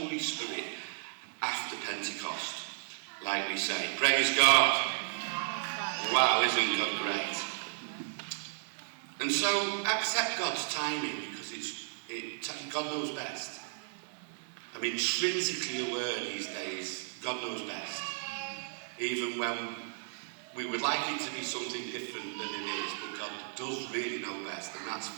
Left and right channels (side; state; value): left; silent; digital silence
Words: Spirit after Pentecost, like we say. Praise God. Wow, isn't God great? And so accept God's timing because God knows best. I'm intrinsically aware these days, God knows best. Even when we would like it to be something different than it is, but God does really know best, and that's